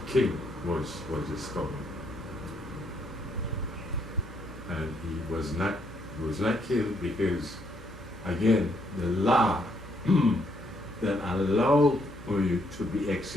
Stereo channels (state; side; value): normal; both; correlation 0.72